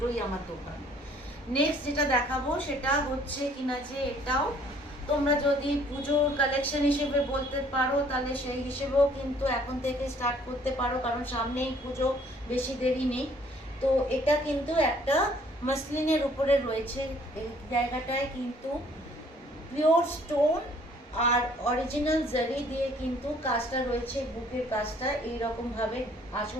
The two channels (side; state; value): both; normal; correlation 0.59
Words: আমার দোকান। নেক্সট যেটা দেখাবো সেটা হচ্ছে কিনা যে এটাও তোমরা যদি পুজোর কালেকশন হিসেবে বলতে পারো, তাহলে সেই হিসেবেও কিন্তু এখন থেকে স্টার্ট করতে পারো, কারণ সামনেই পুজো, বেশি দেরি নেই। তো এটা কিন্তু একটা মাসলিনের উপরে রয়েছে। এই জায়গাটায় কিন্তু পিওর স্টোন আর অরিজিনাল জারি দিয়ে কিন্তু কাজটা রয়েছে। বুকের কাজটা এইরকম ভাবে,